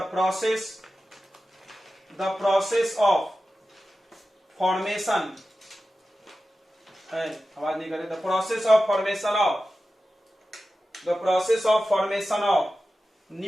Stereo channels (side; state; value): both; normal; correlation 0.94